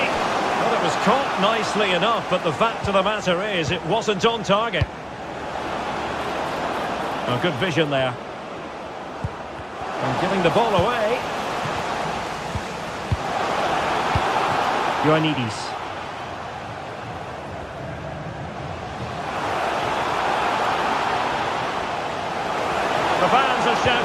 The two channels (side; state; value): both; identical; correlation 1.00